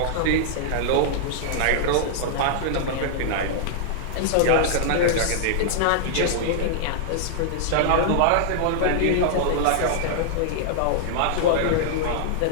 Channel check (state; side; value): different; both; correlation -0.01